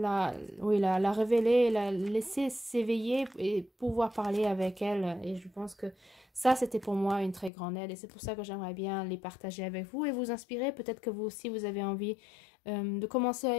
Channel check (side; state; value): right; drops out; at 7.5 s